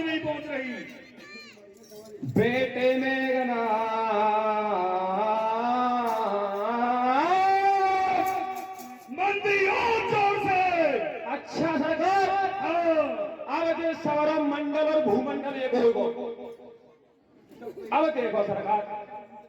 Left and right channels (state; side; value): identical; both; correlation 1.00